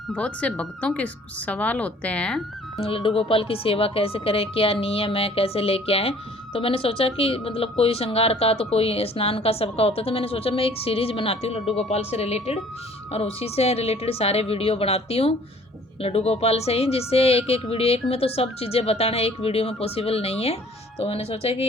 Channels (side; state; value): both; normal; correlation 0.54